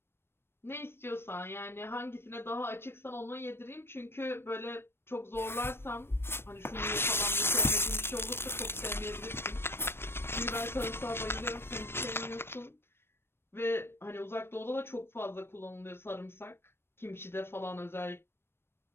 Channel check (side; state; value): right; late; 0.12 ms